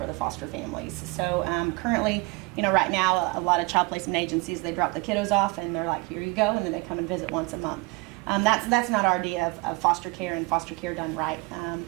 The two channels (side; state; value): left; quieter; 26.2 dB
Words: the foster families. So currently, right now, a lot of child placement agencies, they drop the kiddos off and they're like, here you go, and then they come and visit once a month. That's not our idea of foster care and foster care done right.